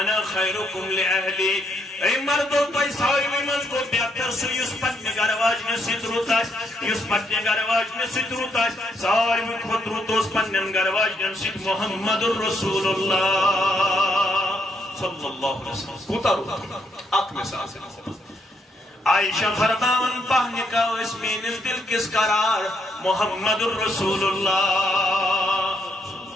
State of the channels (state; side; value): normal; both; correlation 0.75